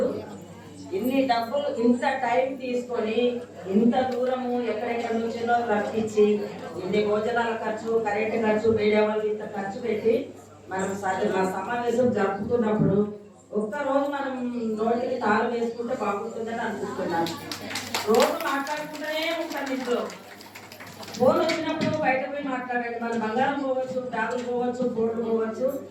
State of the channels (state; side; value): identical; both; correlation 1.00